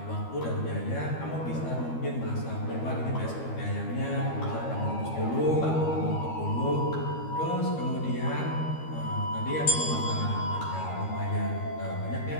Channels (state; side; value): late; right; 13 ms